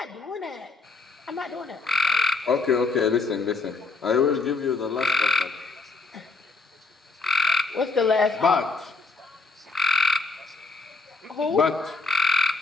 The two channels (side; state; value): right; quieter; 3.9 dB